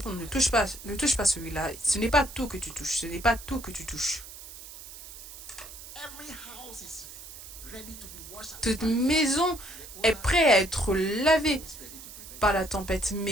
Ne touche pas celui-là. Ce n'est pas tout que tu touches. Ce n'est pas tout que tu touches. Toute maison est prête à être lavée par la tempête,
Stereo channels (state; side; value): noise; right; hiss, 14 dB below the sound